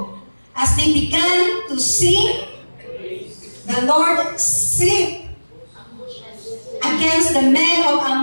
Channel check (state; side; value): inverted; both; correlation -1.00